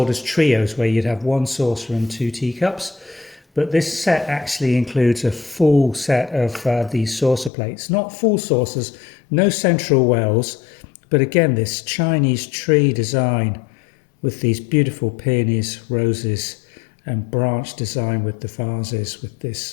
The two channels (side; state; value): right; drops out; at 7.5 s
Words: as trios, where you'd have one saucer and two teacups, but this set actually includes a full set of these saucer plates. Not full saucers, no central wells, but again this Chinese tree design with these beautiful peonies, roses and branch design with the vases, with